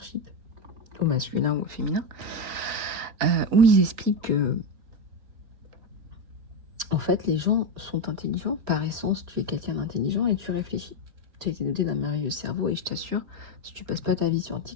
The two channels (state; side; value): late; left; 3.6 ms